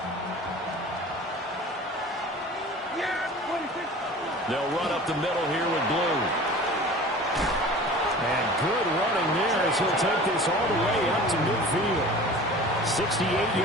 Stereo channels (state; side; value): normal; both; correlation 0.41